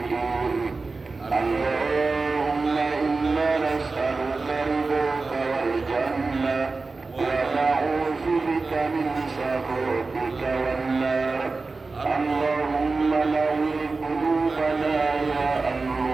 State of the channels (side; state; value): left; quieter; 3.9 dB